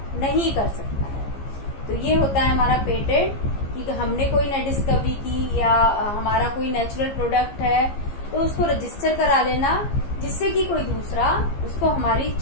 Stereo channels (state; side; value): late; right; 15 ms